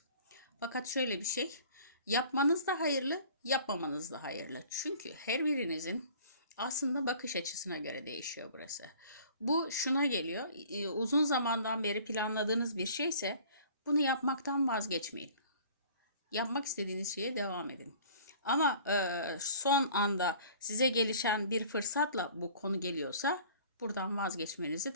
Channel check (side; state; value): both; inverted; correlation -0.49